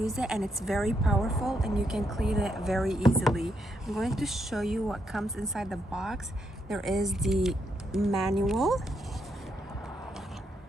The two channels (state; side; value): normal; both; correlation 0.79